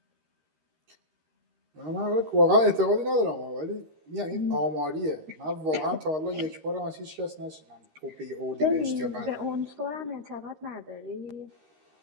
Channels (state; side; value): late; left; 13 ms